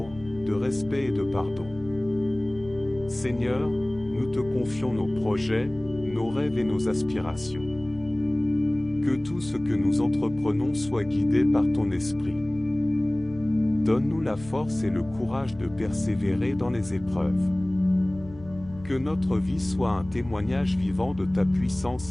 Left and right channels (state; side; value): noise; left; hum, 18 dB below the sound